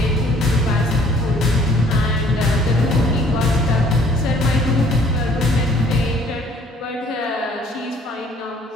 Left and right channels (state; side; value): normal; both; correlation 0.58